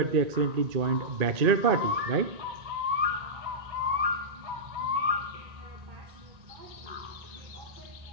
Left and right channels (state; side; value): late; left; 2.4 ms